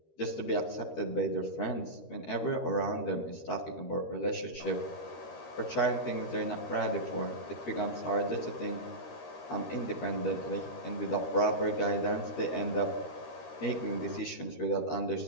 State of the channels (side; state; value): right; late; 13 ms